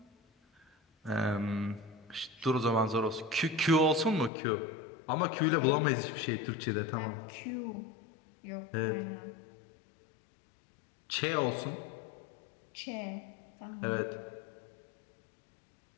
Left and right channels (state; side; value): drops out; right; at 4.3 s